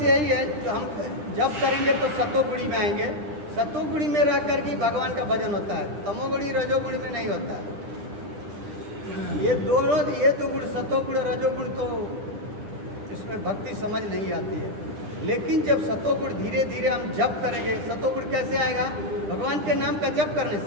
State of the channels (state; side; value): late; left; 10 ms